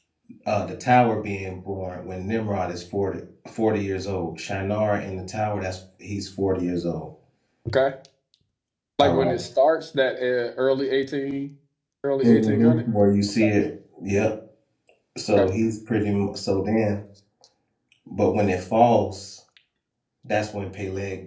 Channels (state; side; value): identical; both; correlation 1.00